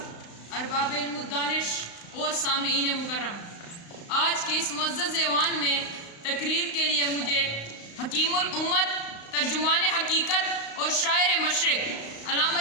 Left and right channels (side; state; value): right; late; 35 ms